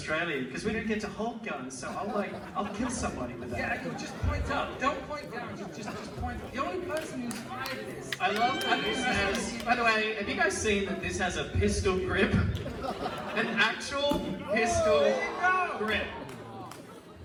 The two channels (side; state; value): both; identical; correlation 1.00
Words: because we don't get to hold guns, so I'll kill somebody with that. Yeah, you just point up. Don't point down. Just point. The only person who's fired this. I love that this has, by the way, have you guys seen that this has a pistol grip? An actual pistol grip.